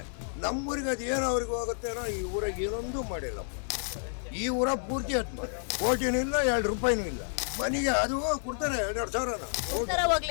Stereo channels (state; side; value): silent; right; 58 dB below the other